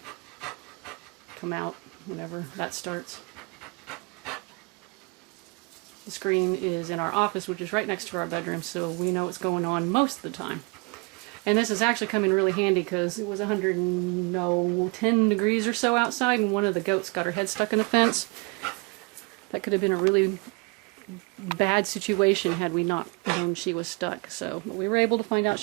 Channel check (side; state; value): left; quieter; 30.4 dB